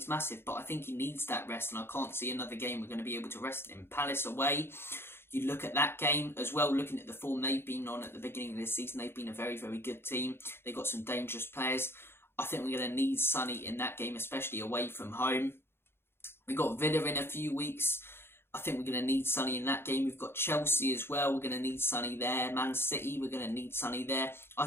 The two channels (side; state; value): right; late; 0.11 ms